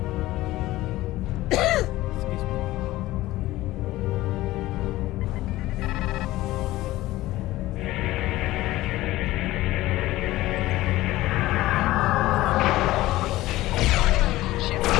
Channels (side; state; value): right; quieter; 17.0 dB